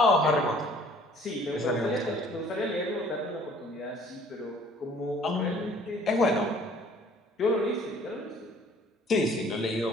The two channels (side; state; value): both; normal; correlation 0.55